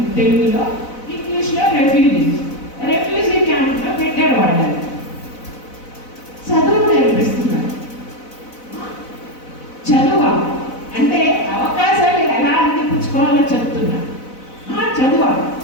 తెలుగులో, ఇంగ్లీష్లో రెఫ్యూజీ క్యాంప్లో పెట్టారు వాళ్ళని. చదువు నేర్పిస్తున్నారు. చదువా అంటే అవకాశాలు ఎలా అందిపుచ్చుకోవాలో చెప్తున్నా. చదువా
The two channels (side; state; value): right; late; 4.0 ms